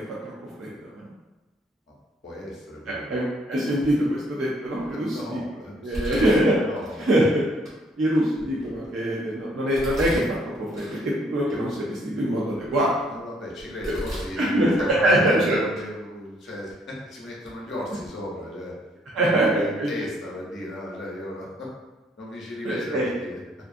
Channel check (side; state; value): both; normal; correlation 0.66